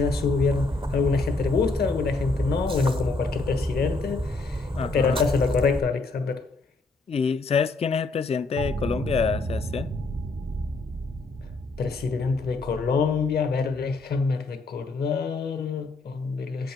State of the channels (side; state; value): right; quieter; 3.5 dB